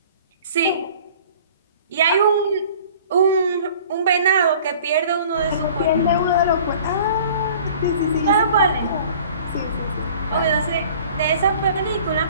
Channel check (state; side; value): inverted; both; correlation -0.48